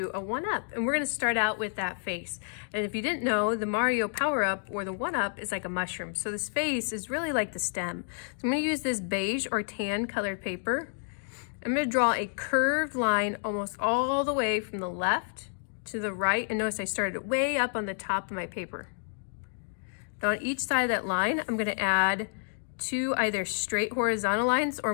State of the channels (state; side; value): silent; right; digital silence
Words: a one-up. And we're going to start out with that face. And if you didn't know, the Mario power-up or the one-up is like a mushroom. So this face is really like the stem. So I'm going to use this beige or tan colored paper. I'm going to draw a curved line almost all the way from the left to the right. And notice I started way up on the top of my paper. Now on each side of that line, I'm going to add two either straight horizontal lines